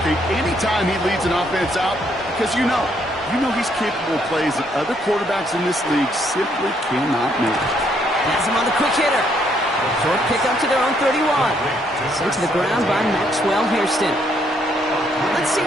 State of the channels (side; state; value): both; normal; correlation 0.71